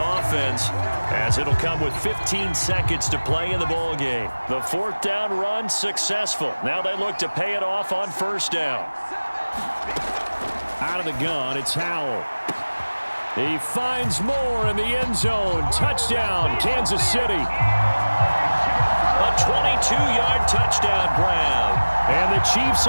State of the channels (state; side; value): inverted; both; correlation -1.00